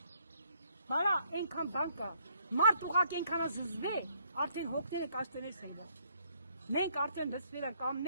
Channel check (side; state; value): both; inverted; correlation -0.68